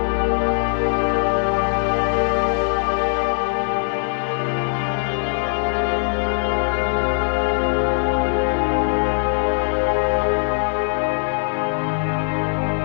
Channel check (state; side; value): silent; right; 65 dB below the other